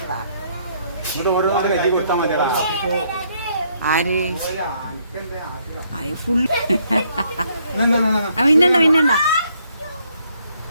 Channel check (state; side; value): inverted; both; correlation -0.70